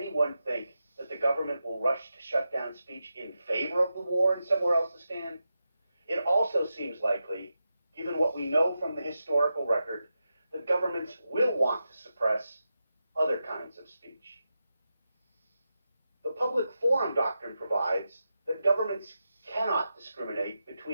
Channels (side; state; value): both; inverted; correlation -0.89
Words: think that the government will rush to shut down speech in favor of the war and somewhere else to stand? It also seems likely, given what we know from the historical record, that governments will want to suppress other kinds of speech. The public forum doctrine provides that governments cannot discriminate